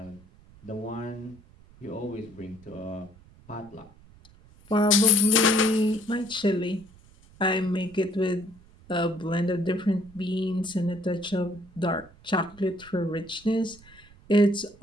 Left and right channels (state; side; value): noise; right; rumble, 25 dB below the sound